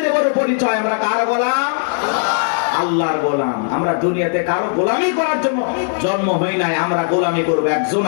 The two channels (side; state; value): right; silent; digital silence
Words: বড় পরিচয়। আমরা কার গোলাম? আল্লাহর গোলাম। আমরা দুনিয়াতে কারো গোলামি করার জন্য জন্ম হই নাই, আমরা গোলামি করবো একজন,